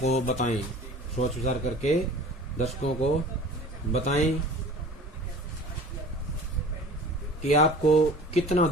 बताएं। सोच विचार करके दर्शकों को बताएं कि आपको कितना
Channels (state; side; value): normal; both; correlation 0.43